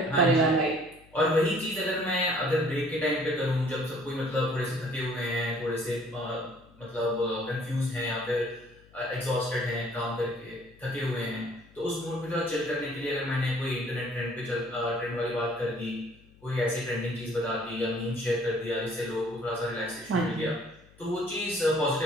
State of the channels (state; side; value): noise; left; hum, 26 dB below the sound